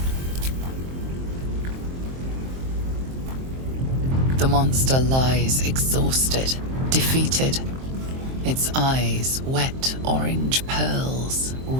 The monster lies exhausted, defeated. Its eyes, wet orange pearls,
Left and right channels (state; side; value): late; left; 23 ms